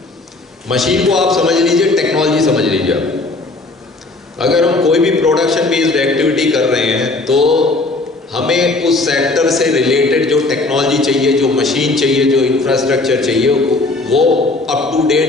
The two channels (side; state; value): right; quieter; 3.2 dB